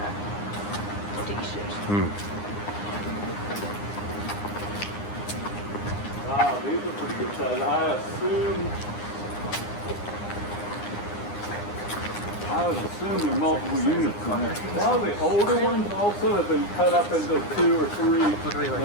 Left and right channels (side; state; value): right; late; 9.8 ms